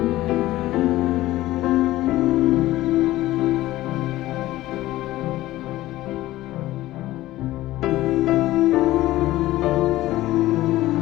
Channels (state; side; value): quieter; right; 16.3 dB